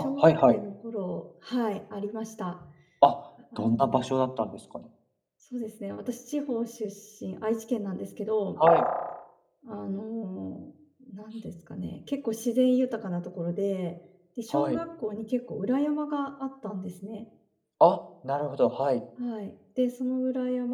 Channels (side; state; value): both; identical; correlation 1.00